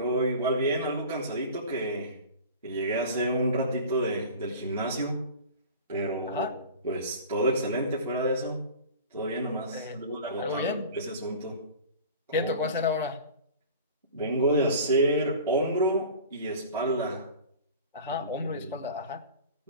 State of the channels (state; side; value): inverted; both; correlation -0.38